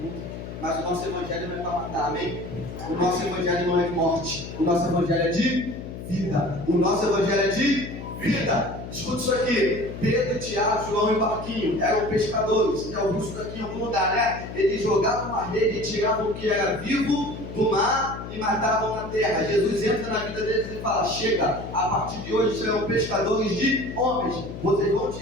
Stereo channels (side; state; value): left; noise; hum, 10 dB below the sound